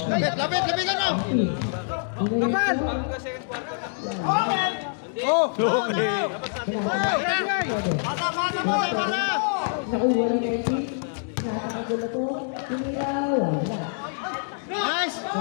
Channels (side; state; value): right; silent; digital silence